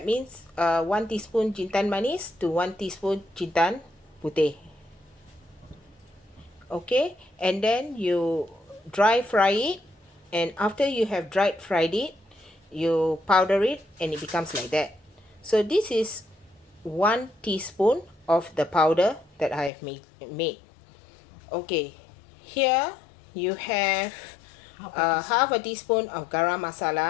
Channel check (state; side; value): drops out; right; at 19.7 s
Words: means 1 teaspoon jintan manis to 1 teaspoon jintan putih. Okay, and then you dry fry it, and after you have fried it, you powder it and it becomes like that. So this is 1 teaspoon of the powder that I have made. Okay, here you have half a teaspoon of garam